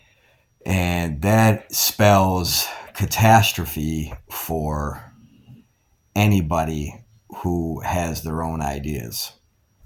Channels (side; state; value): both; identical; correlation 1.00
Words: And that spells catastrophe for anybody who has their own ideas